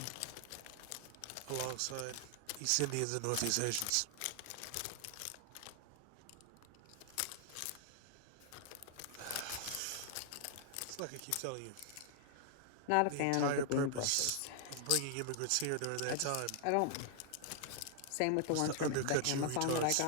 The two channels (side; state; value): both; different; correlation 0.00